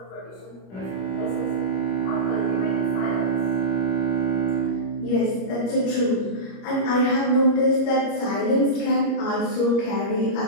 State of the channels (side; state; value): right; late; 25 ms